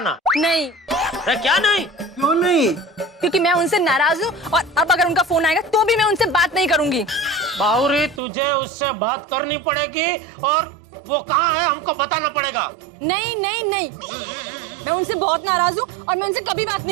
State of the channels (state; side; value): drops out; left; at 8.2 s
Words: नहीं। अरे क्या नहीं? क्यों नहीं? क्योंकि मैं उनसे नाराज हूँ और अब अगर उनका फोन आएगा तो भी मैं उनसे बात नहीं करूंगी। बावरी तुझे उससे बात करनी पड़ेगी और वो कहाँ है हमको बताना पड़ेगा। नहीं नहीं नहीं, मैं उनसे बहुत नाराज हूँ और मैं उनसे कभी बात